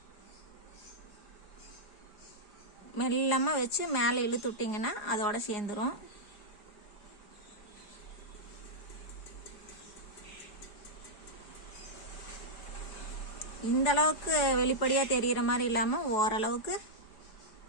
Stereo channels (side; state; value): right; late; 4.8 ms